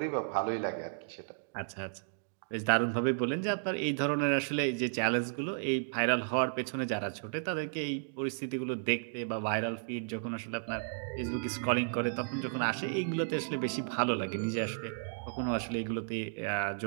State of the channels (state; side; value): silent; left; digital silence